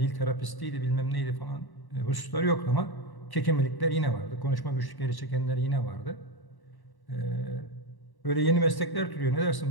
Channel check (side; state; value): right; late; 1.1 ms